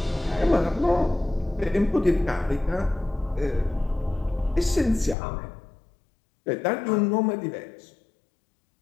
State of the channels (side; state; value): right; drops out; at 5.2 s